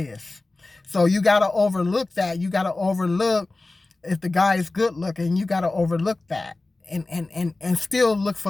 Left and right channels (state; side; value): quieter; right; 3.2 dB